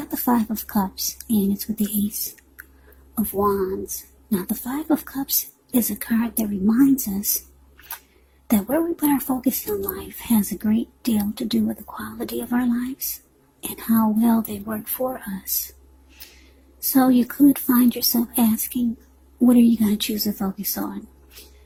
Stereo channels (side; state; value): both; identical; correlation 1.00